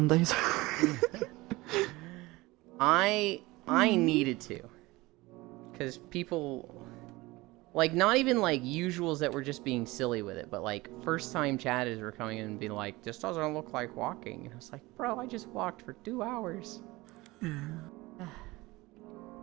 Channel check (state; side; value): quieter; left; 21.0 dB